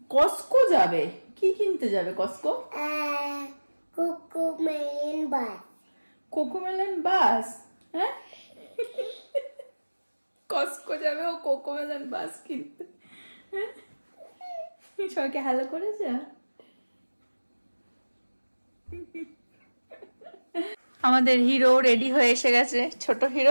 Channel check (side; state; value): both; inverted; correlation -1.00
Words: কস্কো যাবে? কি কিনতে যাবে কস্কো? Cocomelon bus. কোকোমেলন বাস? হ্যাঁ, কস্কো যাবে ও কোকোমেলন বাস কিনতে। সবাইকে হ্যালো করেছে। আমাদের হিরো রেডি হয়ে এসে গেছে, ছোট